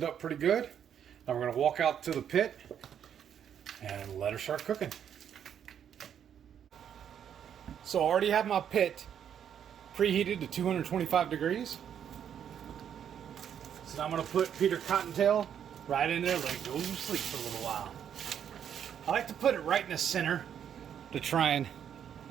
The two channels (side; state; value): left; quieter; 8.9 dB